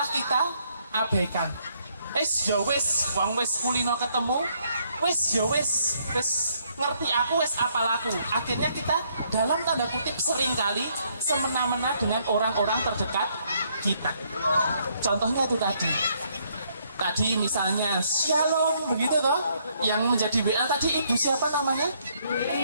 kita abaikan. Ya wis, wong wis kulino ketemu, wis ya wis ngerti aku, wis apal aku. Akhirnya kita dalam tanda kutip seringkali semena-mena dengan orang-orang terdekat kita. Contohnya itu tadi misalnya Shalom begitu toh, yang menjadi WA tadi ibu siapa namanya?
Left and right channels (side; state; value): both; inverted; correlation -0.70